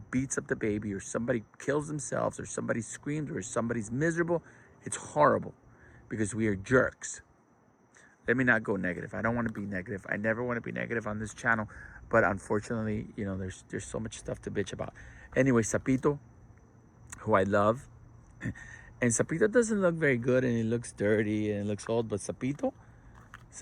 beats up the baby or somebody kills themselves or somebody screams or somebody's miserable. It's horrible because we are jerks. Let me not go negative. I don't want to be negative. I never want to be negative on this channel. But unfortunately, there's so much stuff to bitch about. Anyway, Sapito, who I love. And Sapito doesn't look very good and it looks dirty and it looks old. But Sapito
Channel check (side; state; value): both; identical; correlation 1.00